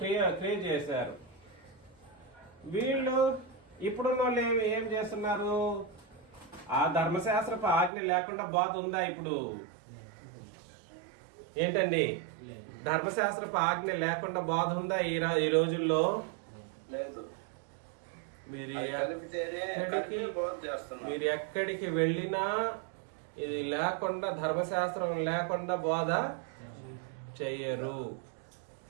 చేశారు. వీళ్ళు ఇప్పుడున్న వాళ్ళు ఏం చేస్తున్నారు? ఆ ధర్మశాస్త్రపు ఆజ్ఞ లేకుండా బోధ ఉందా ఇప్పుడు? ఏంటండి? ధర్మశాస్త్రపు ఆజ్ఞ లేకుండా బోధ ఉందా ఈ రోజుల్లో? లేదు. మీరు ఎక్కడికి వెళ్ళినా ఇది లేకుండా, ధర్మశాస్త్రం లేకుండా బోధ చెయ్యరు.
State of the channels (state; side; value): drops out; left; at 7.9 s